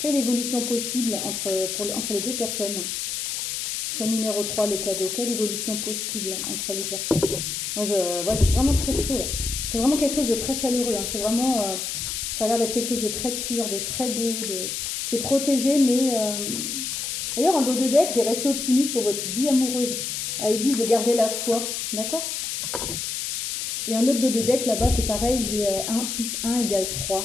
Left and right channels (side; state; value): left; noise; hiss, 3 dB below the sound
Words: évolution possible entre les deux personnes? Choix numéro 3, le cadeau. Quelle évolution possible entre les personnes? Moi, j'ai vraiment très chaud là. C'est vraiment quelque chose de très chaleureux. Hein. C'est vraiment. Ça a l'air d'être quelque chose de très pur, de très beau. C'est protégé, mais. D'ailleurs, en dos de deck, j'ai resté optimiste pour votre vie amoureuse. Ils disent de garder la foi. D'accord? Et un autre dos de deck là-bas, c'est pareil. J'ai 1 plus 1 égale